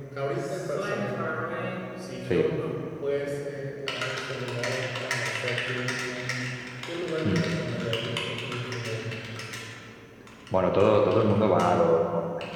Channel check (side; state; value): both; identical; correlation 1.00